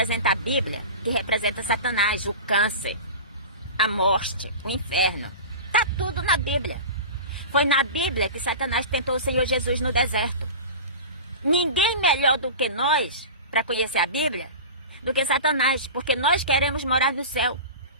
a Bíblia, que representa Satanás, o câncer, a morte, o inferno. Está tudo na Bíblia. Foi na Bíblia que Satanás tentou o Senhor Jesus no deserto. Ninguém melhor do que nós para conhecer a Bíblia do que Satanás, porque nós queremos morar no céu.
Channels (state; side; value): inverted; both; correlation -0.32